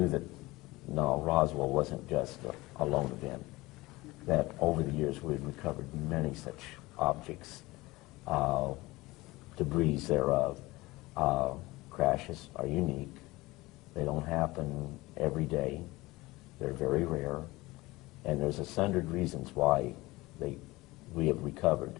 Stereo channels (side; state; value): right; quieter; 20.6 dB